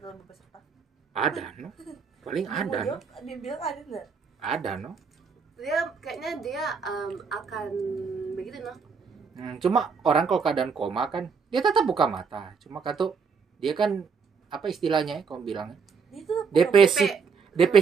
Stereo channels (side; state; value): left; quieter; 5.7 dB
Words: dalam peserta. Ada, no. Paling ada, no. Dia bilang ada nggak? Ada, no. Kayaknya dia akan begitu no. Cuma orang kalau keadaan koma kan dia tetap buka mata. Cuma kata dia kan apa istilahnya ya kamu bilangnya? DP